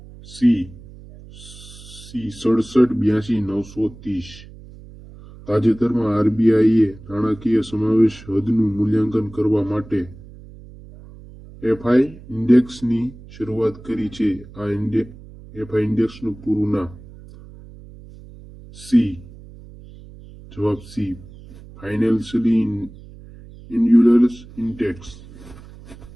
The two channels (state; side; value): noise; right; hum, 19 dB below the sound